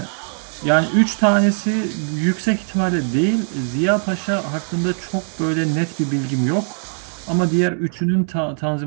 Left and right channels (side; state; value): left; silent; digital silence